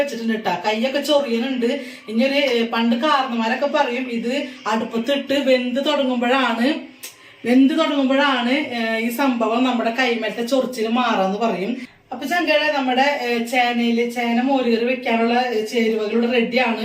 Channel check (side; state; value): both; identical; correlation 1.00